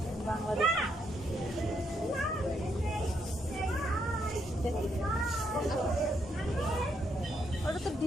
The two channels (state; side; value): normal; both; correlation 0.76